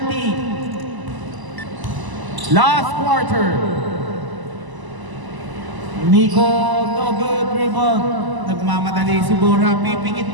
Last quarter. Nico, no good rebound. Nagmamadali si Borja. Pipingit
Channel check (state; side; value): late; left; 1.0 ms